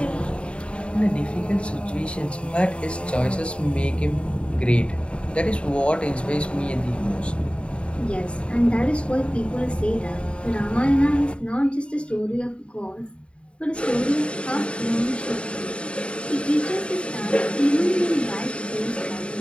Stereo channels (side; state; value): right; late; 0.057 ms